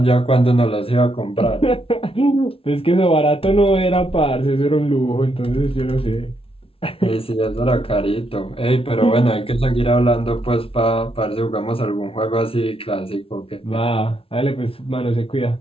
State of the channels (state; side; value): late; right; 0.26 ms